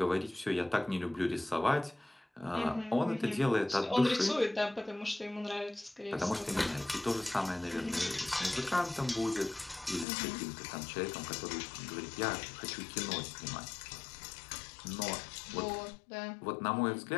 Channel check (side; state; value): right; drops out; at 10.1 s